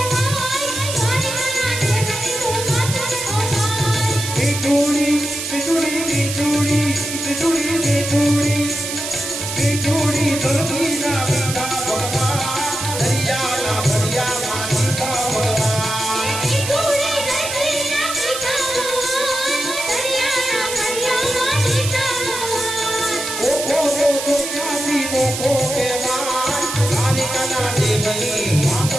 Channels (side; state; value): right; noise; hiss, 5 dB below the sound